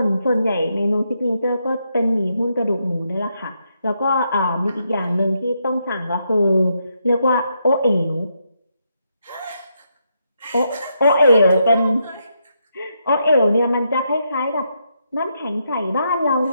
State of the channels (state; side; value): inverted; both; correlation -0.80